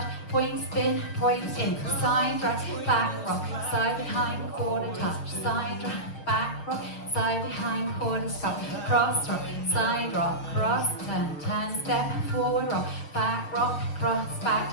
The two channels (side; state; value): right; late; 6.6 ms